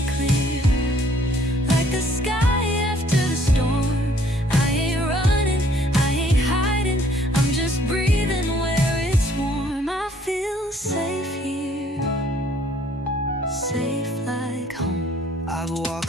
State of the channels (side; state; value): both; normal; correlation 0.61